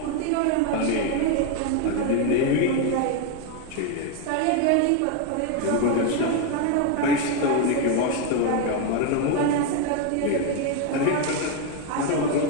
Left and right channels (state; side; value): different; both; correlation 0.02